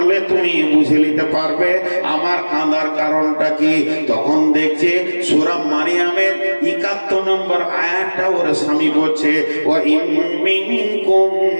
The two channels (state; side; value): inverted; both; correlation -1.00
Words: তুমি বুঝে নিতে পারবে আমার কাঁদার কারণটা কি। তখন দেখছে সূরা মারিয়ামের 71 নম্বর আয়াতটা ওর স্বামী বলছে, ওয়া ইন মিনকুম